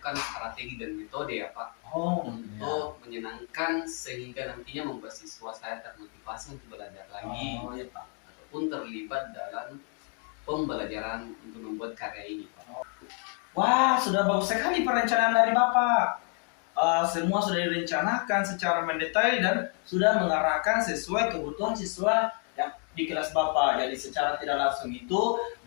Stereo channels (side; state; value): right; quieter; 39.4 dB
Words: strategi dan metode ya Pak untuk menyenangkan sehingga nantinya membuat siswa saya termotivasi untuk belajar lagi ataupun terlibat dalam pembelajaran untuk membuat karya ini Pak. Wah, sudah bagus sekali perencanaan dari Bapak. Semua sudah direncanakan secara mendetail dan sudah mengarahkan sesuai kebutuhan siswa yang di kelas Bapak. Jadi secara tidak langsung itu